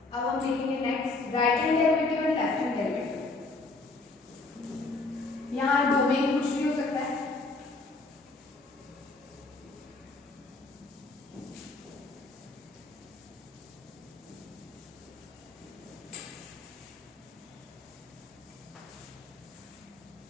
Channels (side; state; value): right; quieter; 3.4 dB